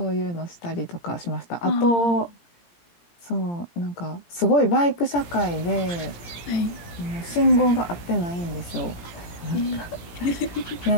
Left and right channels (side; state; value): right; late; 17 ms